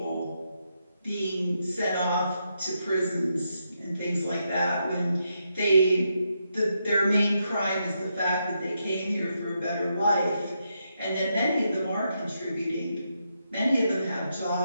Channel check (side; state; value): both; inverted; correlation -0.82